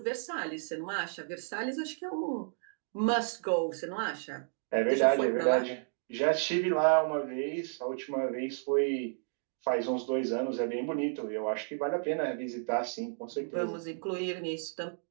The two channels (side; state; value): left; silent; digital silence